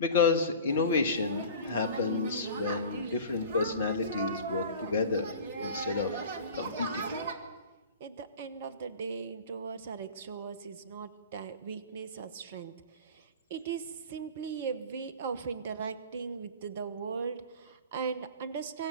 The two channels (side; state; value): both; inverted; correlation -0.38